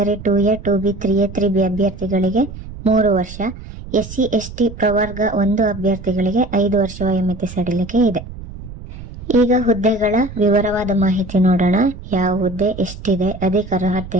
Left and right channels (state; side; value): noise; right; rumble, 13 dB below the sound